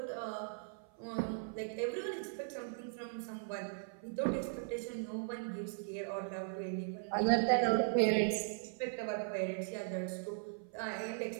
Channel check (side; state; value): left; silent; 52 dB below the other